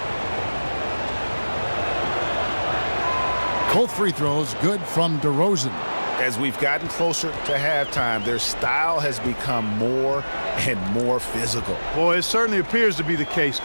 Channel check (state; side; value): inverted; both; correlation -1.00